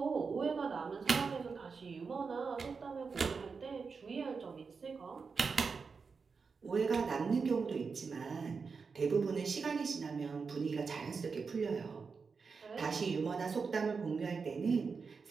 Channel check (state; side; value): quieter; left; 5.1 dB